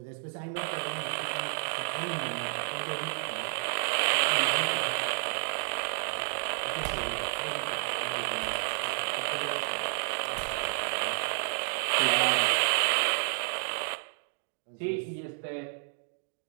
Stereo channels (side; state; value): left; silent; 57 dB below the other